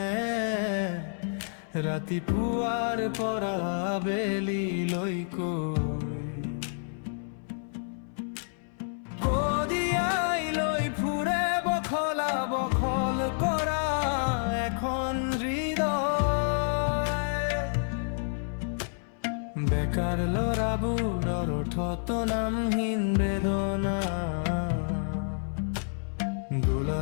রাতি পুয়ার পরা বেলি লই কই কদিয়াই লই ফুরে বখলা বখল করা এখন হৃদয়। বেকার লড়াবুর অরঠত নামহীন বেদনা,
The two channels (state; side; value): silent; right; 59 dB below the other